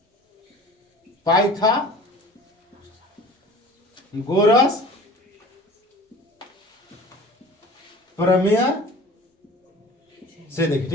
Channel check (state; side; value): normal; both; correlation 0.43